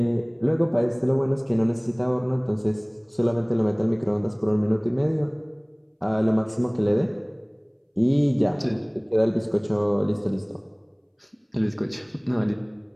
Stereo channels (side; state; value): both; identical; correlation 1.00